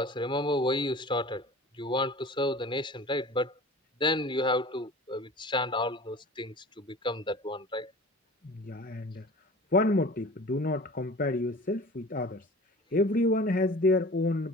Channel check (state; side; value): normal; both; correlation 0.41